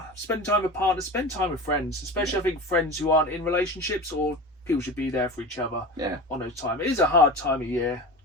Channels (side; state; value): both; normal; correlation 0.30